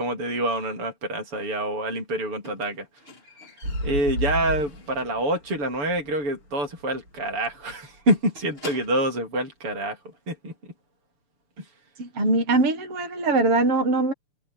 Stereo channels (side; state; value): left; late; 6.8 ms